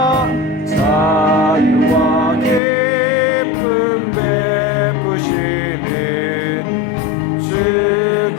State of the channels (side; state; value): right; drops out; at 2.6 s